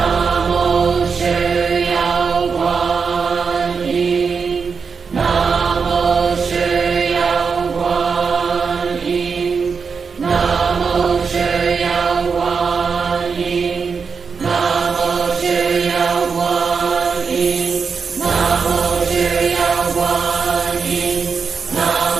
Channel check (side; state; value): left; quieter; 5.5 dB